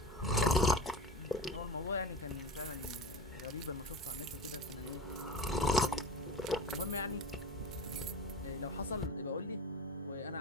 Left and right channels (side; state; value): both; normal; correlation 0.30